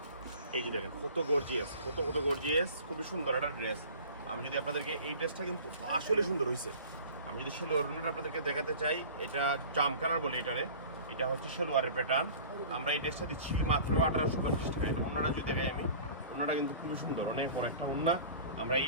এই যে দেখেন কত গর্জিয়াস, কত গর্জিয়াস, খুবই সুন্দর একটা ড্রেস। আমি যদি আপনাদেরকে এই ড্রেসটা কিন্তু আসলে সুন্দর হয়েছে। আমি যদি সেলোয়ারটা আপনাদেরকে দেখাতে চাই, এটা জাম কালার বলে এটারে। এটা হচ্ছে সেলোয়ারের প্যাটার্ন। আমরা এই ড্রেসটা দিচ্ছি মাত্র 1850 টাকা। এটা ওন্নাটা যদি দেখাই আমি, ওন্নাটা কিন্তু খুবই সুন্দর, অনেক বড় একটা ওন্না। আমরা এই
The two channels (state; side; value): inverted; both; correlation -0.42